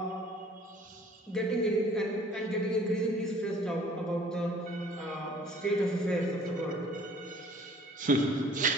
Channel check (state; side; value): normal; both; correlation 0.54